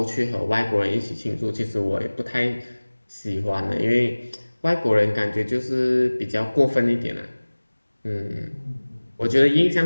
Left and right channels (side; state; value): both; inverted; correlation -1.00